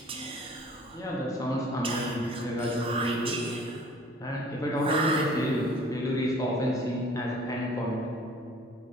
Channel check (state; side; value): normal; both; correlation 0.51